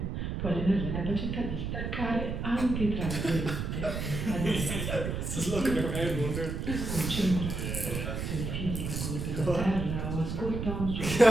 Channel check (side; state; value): right; noise; rumble, 3 dB below the sound